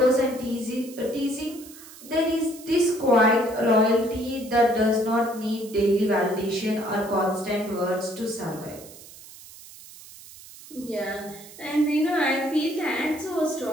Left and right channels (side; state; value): right; noise; hiss, 18 dB below the sound